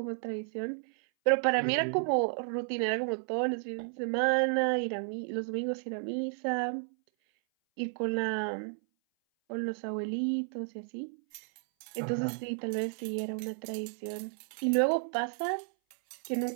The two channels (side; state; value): left; silent; 56 dB below the other